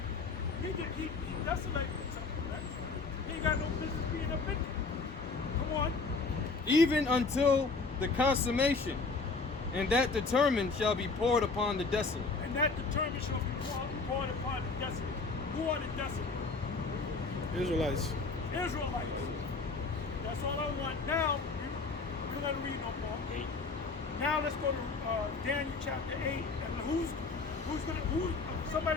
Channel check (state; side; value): quieter; right; 4.1 dB